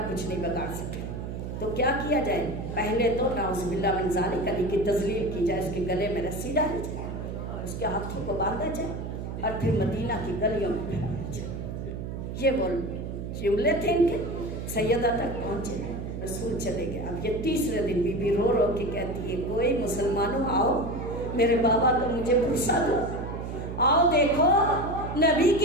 कुछ नहीं बिगाड़ सके। तो क्या किया जाए? पहले तो नाउज़ुबिल्लाह मिन ज़ालिक अली की तज़लील की जाए, उसके गले में रस्सी डाली जाए, उसके हाथों को बांधा जाए और फिर मदीना की गलियों में फैलाया जाए। ये वो जुमले थे इनके, सैयदा तक पहुँचे, रसूल चले गए। अब ये तीसरे दिन बीबी रो रो के कहती है, कोई मुसलमानों आओ, मेरे बाबा को मुझे पुरसा दो, आओ देखो नबी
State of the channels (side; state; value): right; noise; hum, 6 dB below the sound